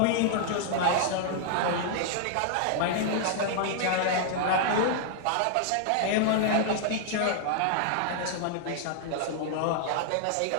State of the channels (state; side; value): different; both; correlation -0.01